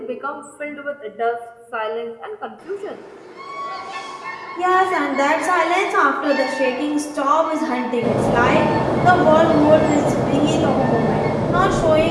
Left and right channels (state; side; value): identical; both; correlation 1.00